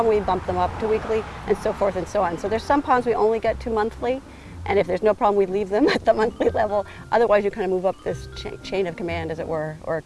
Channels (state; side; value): identical; both; correlation 1.00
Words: we bump them up to weekly, and so forth and so on. So there's some ponds we only get to monthly, and if there's no problem, we leave them at the monthly level. Otherwise, you kind of move up this chain of command, as it were, or a